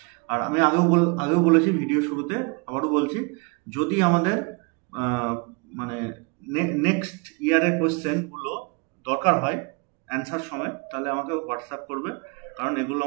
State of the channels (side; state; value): left; quieter; 31.7 dB